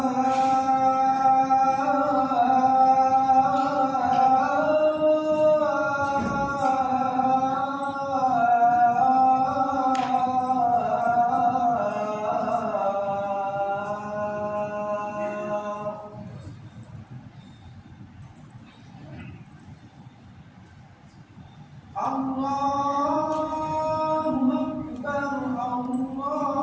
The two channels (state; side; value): identical; both; correlation 1.00